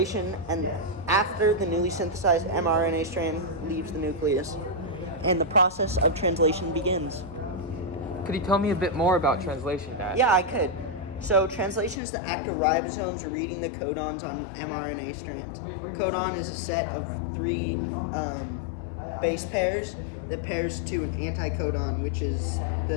and after the newly synthesized mRNA strand leaves the nucleus, and the process of translation begins. Could you tell me a bit more about translation, Dad? Yeah, I could. So translation is the act of ribosomes reading the codons on mRNA strands. Codon is a set of three base pairs that pairs to an anticodon, which is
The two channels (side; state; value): right; drops out; at 12.0 s